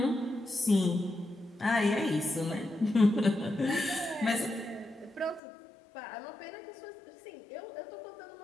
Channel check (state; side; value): drops out; right; at 5.4 s